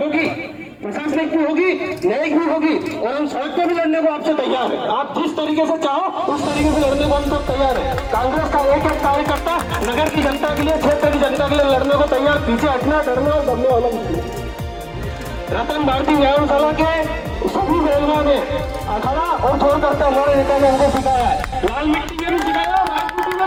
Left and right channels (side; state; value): both; identical; correlation 1.00